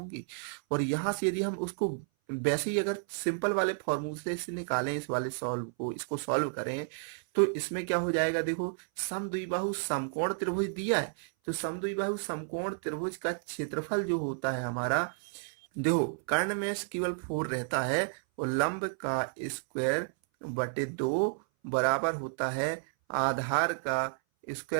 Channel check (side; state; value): left; silent; 57 dB below the other